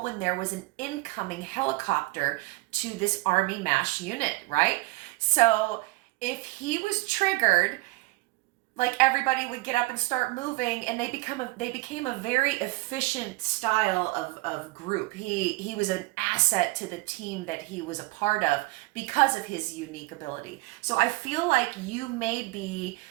when there was an incoming helicopter to this Army MASH unit, right? So if he was triggered, like everybody would get up and start moving, and they became a very efficient style of group. He was an asset to the team that he was a part of because of his unique ability. So I feel like you may be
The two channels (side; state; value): left; quieter; 22.8 dB